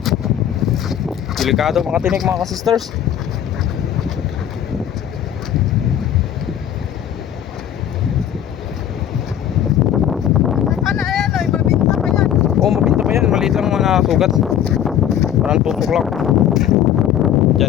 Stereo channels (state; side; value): quieter; right; 10.1 dB